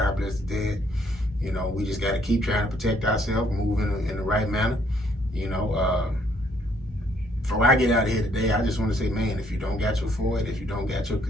bless the dead. We just got to keep trying to protect ourselves, move in the right manner. Before I get out of here today, I just want to say, man, if you don't got your FOID, if you don't got your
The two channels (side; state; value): both; normal; correlation 0.67